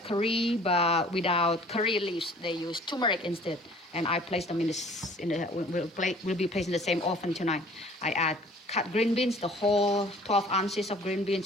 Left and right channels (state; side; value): normal; both; correlation 0.51